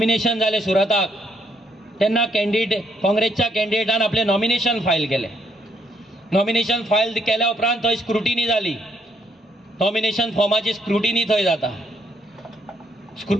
जाले सुरताक, तेन्ना काँग्रेसच्या कॅन्डिडेटान आपले नॉमिनेशन फायल केले. नॉमिनेशन फायल केल्या उपरांत थंय स्क्रुटिनी जाली, नॉमिनेशन फॉर्माची स्क्रुटिनी थंय जाता.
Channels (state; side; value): normal; both; correlation 0.72